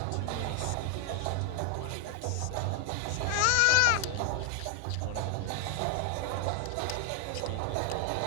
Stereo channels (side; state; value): both; different; correlation 0.00